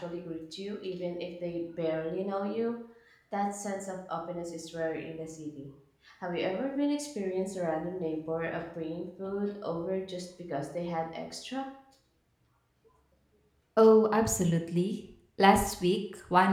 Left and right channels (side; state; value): both; identical; correlation 1.00